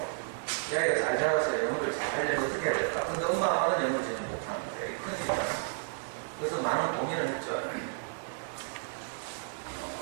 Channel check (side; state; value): left; silent; digital silence